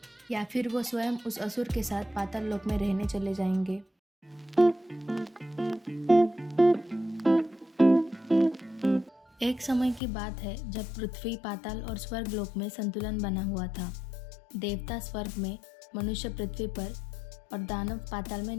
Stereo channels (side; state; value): right; drops out; at 10.0 s